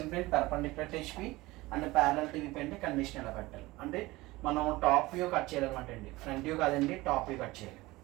plane perpendicular to HP and parallel to VP అంటే కండిషన్ ఎలా పెట్టాలి అంటే మనం టాప్ వ్యూ కట్ చేయాలన్నమాట అండి, ఫ్రంట్ వ్యూ కాదండి, టాప్ వ్యూ కట్ చేయాలి.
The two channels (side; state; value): left; quieter; 20.1 dB